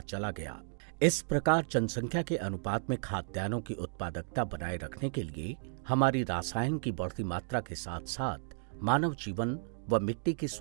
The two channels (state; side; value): silent; left; 55 dB below the other